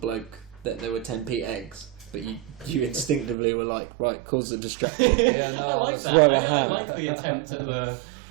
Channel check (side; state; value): left; drops out; at 3.4 s